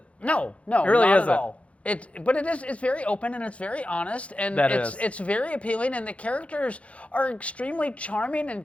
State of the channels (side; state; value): right; late; 0.063 ms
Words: no, It really not isn't. at all. It's very open and it's very honest and it's very appealing, and the characters are extremely charming and